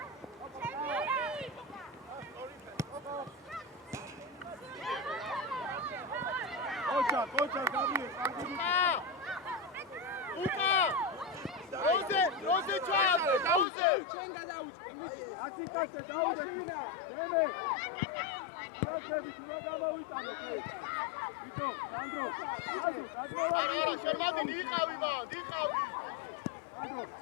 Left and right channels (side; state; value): right; drops out; at 13.7 s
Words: Kocha, Gabriel. Rose Chave, Chenga dauch. Atikase dauch vina. Deme. Rosები თუ რა გამოვიტანო კი. ბიჭო, სანდრო. შემადი იყავი და, იყავი. სანდრო,